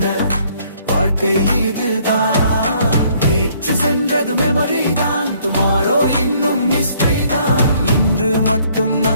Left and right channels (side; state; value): both; inverted; correlation -0.63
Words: வாழ்க்கை இதுதான். நேற்று சென்றது மெமரி தான், டுமாரோ இன்னும் மிஸ்ட்ரி தான். இன்று மட்டும்